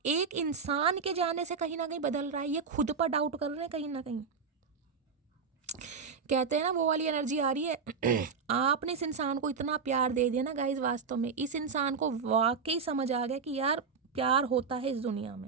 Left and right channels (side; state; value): left; quieter; 5.5 dB